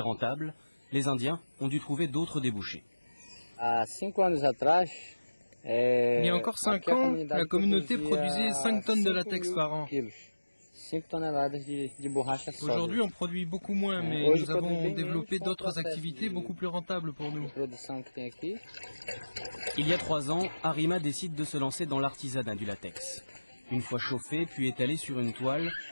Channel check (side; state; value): both; inverted; correlation -1.00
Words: Les Indiens ont dû trouver d'autres débouchés. Il y a encore 5 ans, la communauté produisait 5 tonnes de latex par an. Aujourd'hui, on produit beaucoup moins, mais nous avons développé d'autres activités beaucoup plus rentables pour nous. Il y a 3 ans, Arima décide de se lancer dans l'artisanat du latex. Une fois chauffé puis étalé sur une toile,